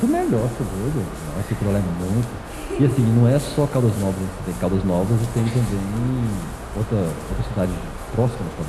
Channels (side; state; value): both; identical; correlation 1.00